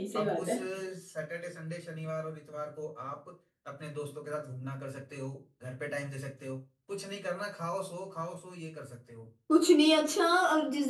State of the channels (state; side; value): identical; both; correlation 1.00